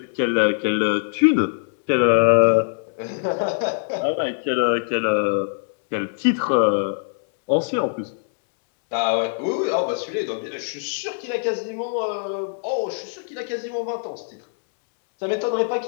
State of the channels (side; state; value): right; silent; 62 dB below the other